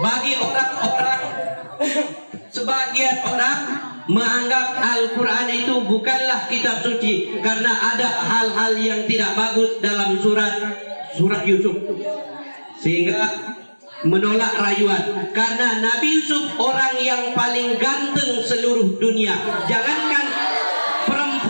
orang-orang, sebagian orang menganggap Al-Quran itu bukanlah kitab suci karena ada hal-hal yang tidak bagus dalam surat Yusuf, sehingga menolak rayuan. Karena Nabi Yusuf orang yang paling ganteng seluruh dunia. Jangankan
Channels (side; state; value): both; inverted; correlation -1.00